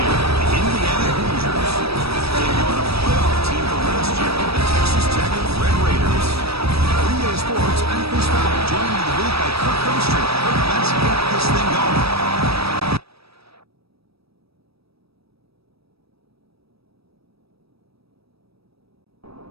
the Indiana Hoosiers. Taking on a playoff team from last year, the Texas Tech Red Raiders. Three-Day Sports, I'm Chris Fowler, joined in the booth by Kirk Herbstreit. Kirk, let's get this thing going.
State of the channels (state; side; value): late; left; 0.77 ms